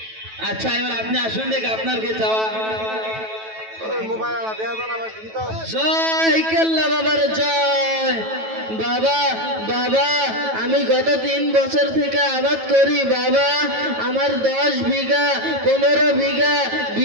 আচ্ছা, এবার আপনি আসুন, দেখে আপনার কি চাওয়া? জয় কেল্লা বাবার জয়। বাবা, বাবা আমি গত 3 বছর থেকে আবাদ করি। বাবা, আমার 10 বিঘা, 15 বিঘা,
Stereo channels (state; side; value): late; left; 9.2 ms